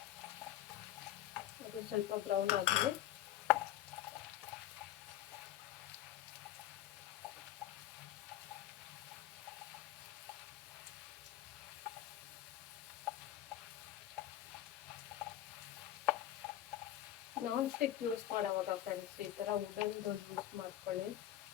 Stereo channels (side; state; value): right; quieter; 12.6 dB